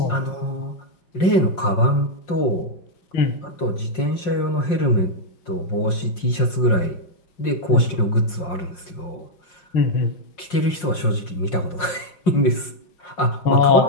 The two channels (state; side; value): late; right; 5.6 ms